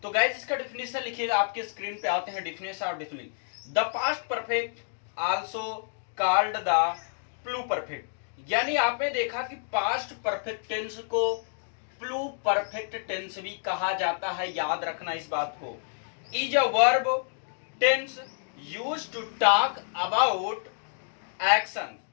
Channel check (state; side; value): silent; right; digital silence